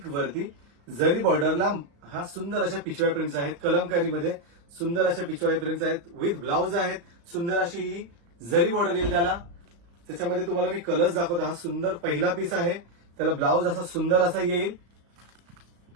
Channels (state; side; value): late; left; 35 ms